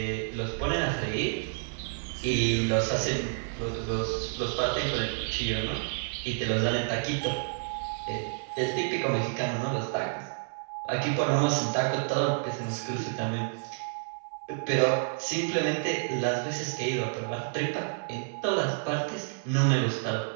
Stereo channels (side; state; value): left; silent; digital silence